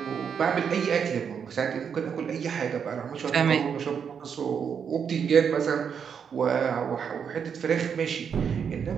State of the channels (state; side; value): quieter; left; 7.1 dB